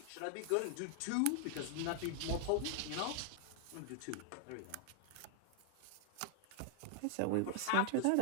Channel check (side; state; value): both; different; correlation 0.00